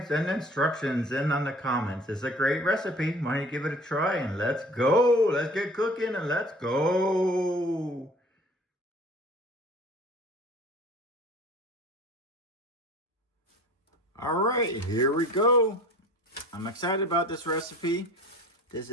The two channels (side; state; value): both; normal; correlation 0.46